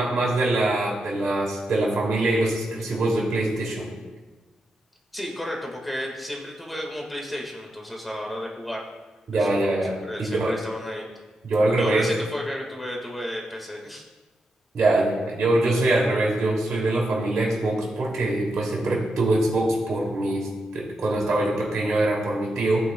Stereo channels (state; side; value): normal; both; correlation 0.85